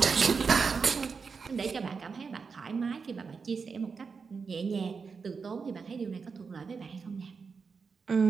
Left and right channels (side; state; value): left; quieter; 5.3 dB